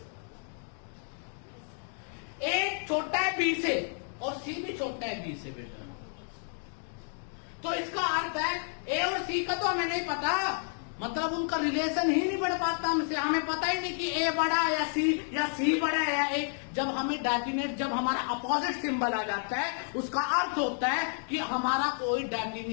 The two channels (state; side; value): silent; right; 57 dB below the other